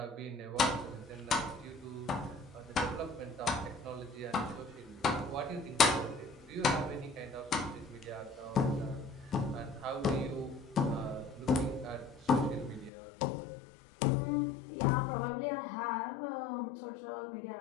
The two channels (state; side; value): drops out; right; at 12.9 s